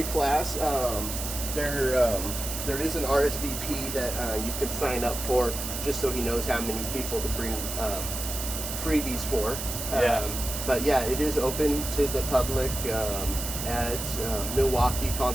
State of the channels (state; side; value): noise; right; hiss, 5 dB below the sound